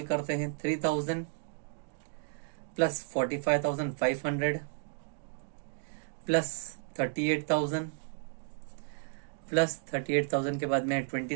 करते हैं 3,000 प्लस 45,500 प्लस 38,000 प्लस 38,000 के बाद में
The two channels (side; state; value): left; silent; digital silence